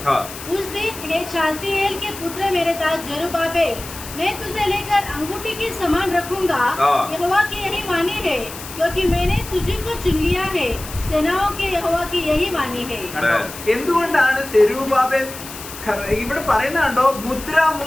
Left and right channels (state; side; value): noise; left; hiss, 13 dB below the sound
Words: हाँ. उस दिन हे शालतिएल के पुत्र मेरे दास जरुब्बाबेल मैं तुझे लेकर अंगूठी के समान रखूंगा. हाँ. यहोवा की यही वाणी है क्योंकि मैंने तुझे को चुन लिया है. सेनाओं के यहोवा की यही वाणी है. എന്തുകൊണ്ടാണ് സെരുബ്ബാബേൽ ഇവിടെ പറയുന്ന കണ്ടോ